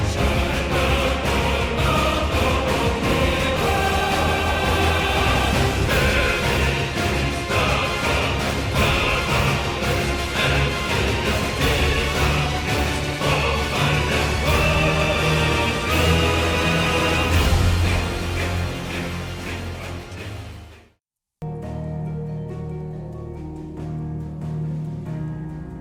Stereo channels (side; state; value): both; identical; correlation 1.00